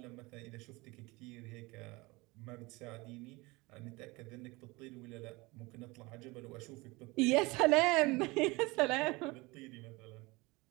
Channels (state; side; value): quieter; left; 23.7 dB